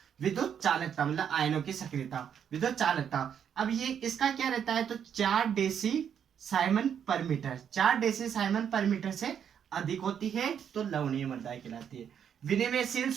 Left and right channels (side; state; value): left; quieter; 8.3 dB